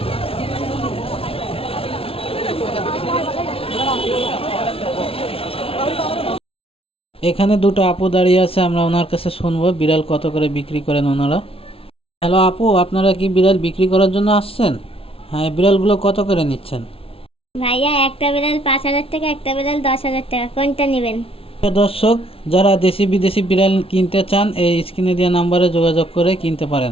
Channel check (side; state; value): right; late; 0.27 ms